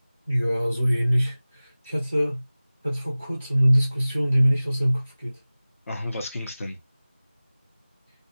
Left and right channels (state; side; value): inverted; both; correlation -0.99